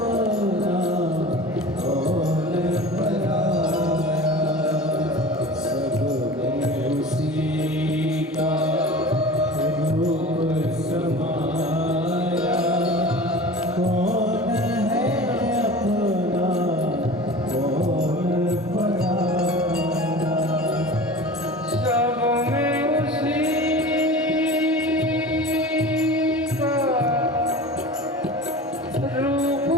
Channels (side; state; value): both; normal; correlation 0.37